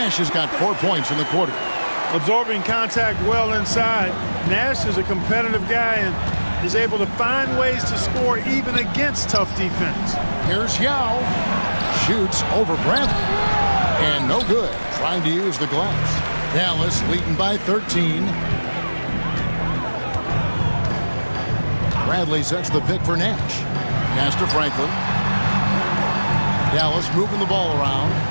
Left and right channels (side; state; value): both; inverted; correlation -1.00